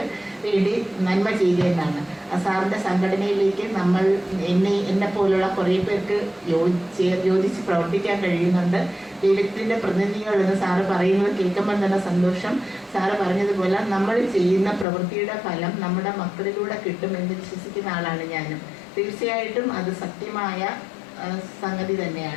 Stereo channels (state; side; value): drops out; right; at 14.9 s